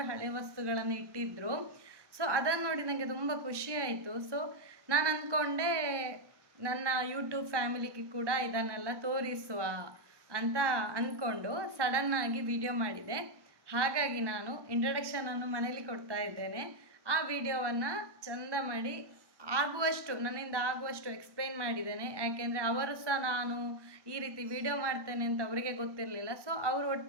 ಹಳೆ ವಸ್ತುಗಳನ್ನು ಇಟ್ಟಿದ್ದರು. ಸೊ ಅದನ್ನು ನೋಡಿ ನನಗೆ ತುಂಬ ಖುಷಿ ಆಯಿತು. ಸೊ ನಾನು ಅಂದ್ಕೊಂಡೆ ನನ್ನ ಯೂಟ್ಯೂಬ್ ಫ್ಯಾಮಿಲಿಗೆ ಕೂಡ ಇದನ್ನೆಲ್ಲ ತೋರಿಸುವ ಅಂತ ಅಂದ್ಕೊಂಡು ಸಡನ್ನಾಗಿ ವಿಡಿಯೋ ಮಾಡಿದೆ. ಹಾಗಾಗಿ ನಾನು ಇಂಟ್ರಡಕ್ಷನನ್ನು ಮನೇಲಿ ಕೊಡ್ತಾ ಇದ್ದೇನೆ. ಆ ವಿಡಿಯೋವನ್ನು ಚಂದ ಮಾಡಿ ನನ್ನಿಂದ ಆಗುವಷ್ಟು ಎಕ್ಸ್ಪ್ಲೈನ್ ಮಾಡಿದ್ದೇನೆ. ಯಾಕೆಂದರೆ ಅವರು ಸಹ ನಾನು ಈ ರೀತಿ ವಿಡಿಯೋ ಮಾಡ್ತೇನೆ ಅಂತ ಅವರಿಗೆ ಗೊತ್ತಿರಲಿಲ್ಲ. ಸೊ ಅವರು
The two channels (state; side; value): late; left; 1.1 ms